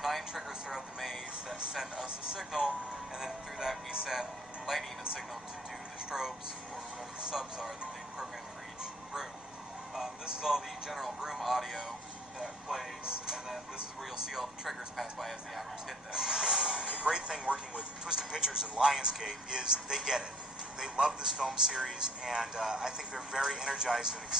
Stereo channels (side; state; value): both; normal; correlation 0.55